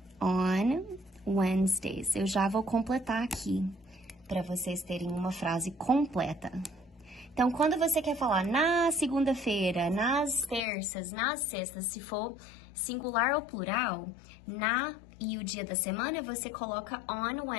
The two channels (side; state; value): right; drops out; at 10.6 s